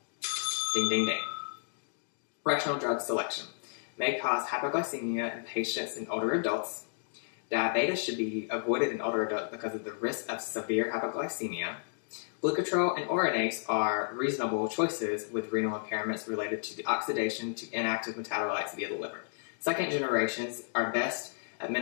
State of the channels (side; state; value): right; silent; digital silence